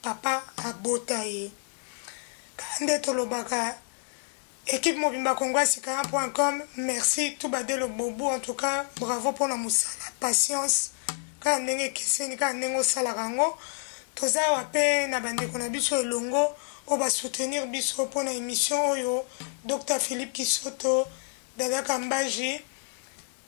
papa abota ye kande tolobaka équipe mobimba congoasikaram.com. Merci tout badelo bobu. En tout cas, bravo pour la musala patience kaka ndenge ekeseni kaka ndenge osalaka yango toza awa mpe na bandeko na biso elongo oyo basoutenir biso mpona émission oyo Dr Philippe Kisoto, Dada Kambaji,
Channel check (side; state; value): right; silent; 59 dB below the other